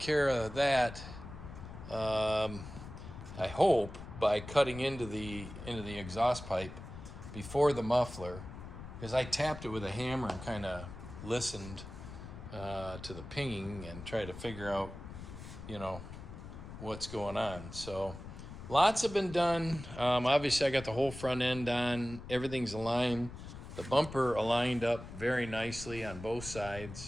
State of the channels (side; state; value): left; noise; rumble, 12 dB below the sound